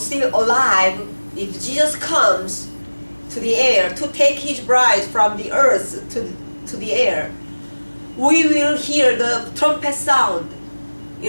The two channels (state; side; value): inverted; both; correlation -1.00